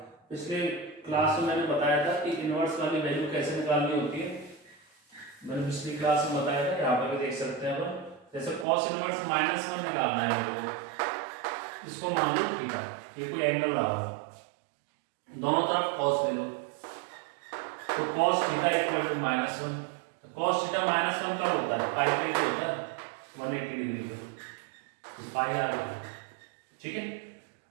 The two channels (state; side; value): drops out; left; at 8.7 s